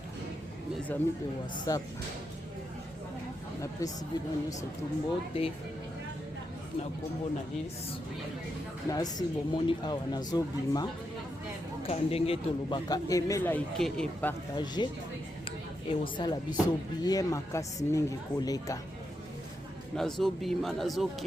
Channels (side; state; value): both; normal; correlation 0.84